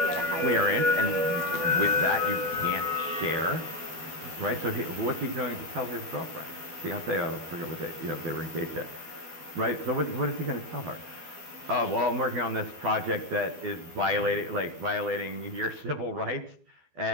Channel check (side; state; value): left; late; 12 ms